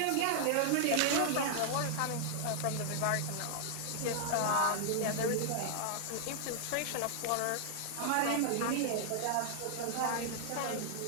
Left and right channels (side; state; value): both; different; correlation -0.01